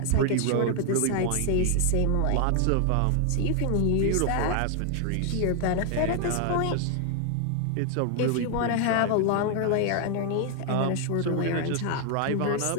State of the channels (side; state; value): both; different; correlation 0.00